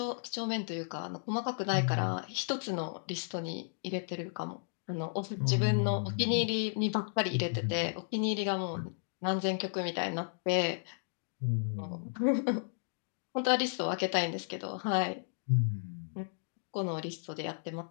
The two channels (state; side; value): silent; right; digital silence